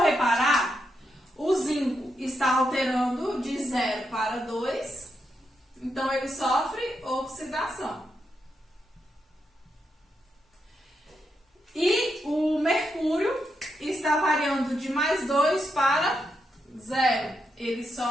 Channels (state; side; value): normal; both; correlation 0.83